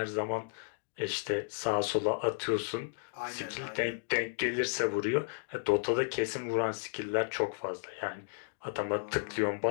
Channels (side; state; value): right; silent; digital silence